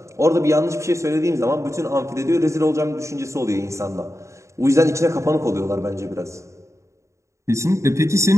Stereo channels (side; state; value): left; late; 0.14 ms